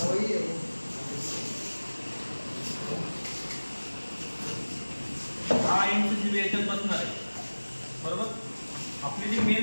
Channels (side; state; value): both; inverted; correlation -1.00